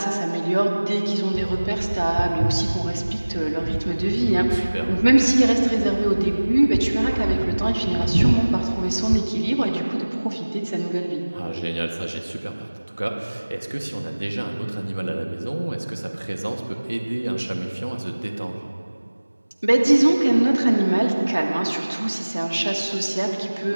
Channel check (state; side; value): inverted; both; correlation -1.00